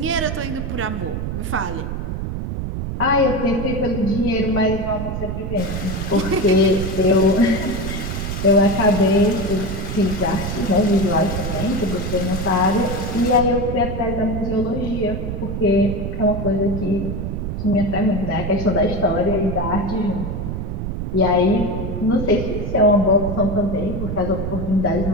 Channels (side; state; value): right; noise; rumble, 4 dB below the sound